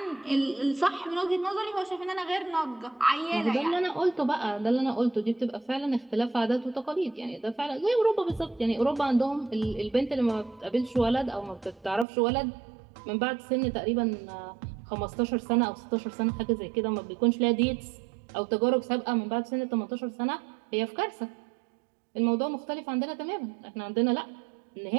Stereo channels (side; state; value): left; drops out; at 12.1 s